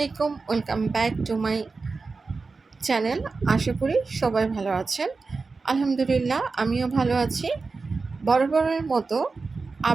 Welcome back to my channel. আশা করি সবাই ভালো আছেন। আলহামদুলিল্লাহ, আমিও ভালো আছি। বরাবরের মতো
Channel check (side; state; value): left; quieter; 4.2 dB